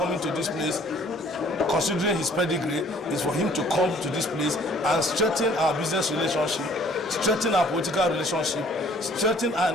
to this place, considering his pedigree, is for him to come to this place and strengthen our business relationship, strengthen our political relationship, strengthen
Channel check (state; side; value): normal; both; correlation 0.57